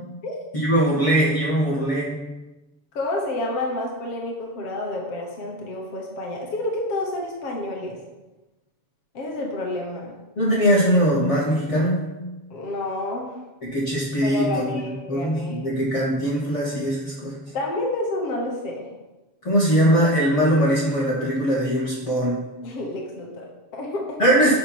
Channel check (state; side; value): late; right; 7.1 ms